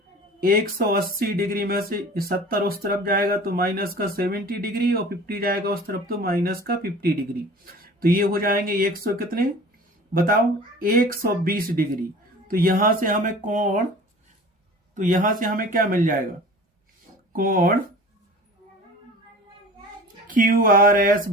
180 डिग्री में से 70 उस तरफ जाएगा तो माइनस का 70 डिग्री, और 50 जाएगा उस तरफ तो माइनस का 50 डिग्री। तो ये हो जाएंगे 100 कितने बताओ, 120 डिग्री। तो यहां से हमें कोण, तो यहां से हमें क्या मिल जाएगा, कोण क्यू आर एस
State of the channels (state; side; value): normal; both; correlation 0.41